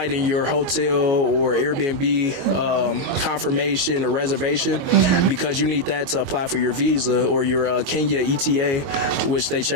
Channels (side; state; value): left; late; 22 ms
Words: and your hotel or Airbnb confirmation or reservation because you need that to apply for your visa or your Kenya ETA, which they